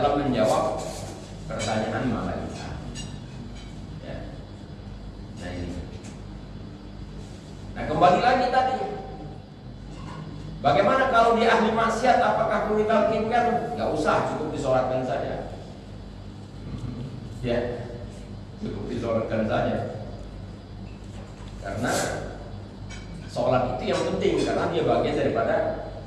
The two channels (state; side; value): identical; both; correlation 1.00